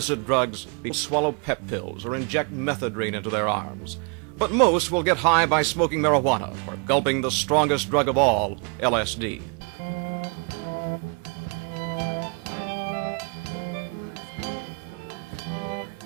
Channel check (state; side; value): quieter; left; 34.9 dB